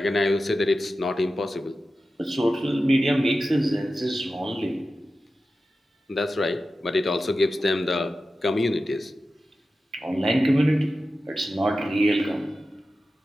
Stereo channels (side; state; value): both; normal; correlation 0.93